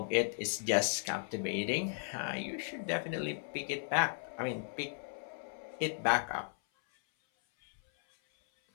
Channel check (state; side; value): silent; right; 54 dB below the other